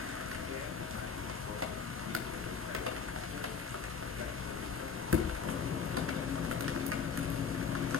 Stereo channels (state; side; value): quieter; right; 5.9 dB